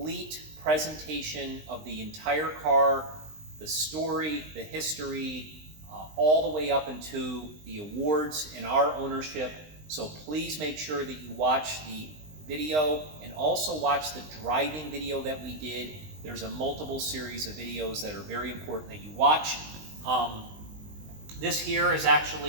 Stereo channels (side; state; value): left; late; 20 ms